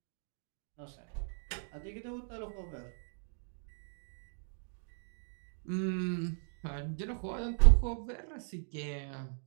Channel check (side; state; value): left; silent; digital silence